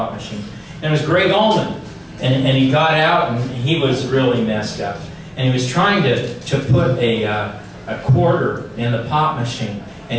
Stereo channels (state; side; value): identical; both; correlation 1.00